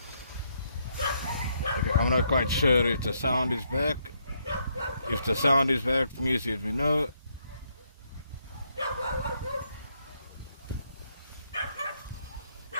Okay, I'm not quite sure if the sound is back. If the sound is back, please let me know.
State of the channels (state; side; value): inverted; both; correlation -0.75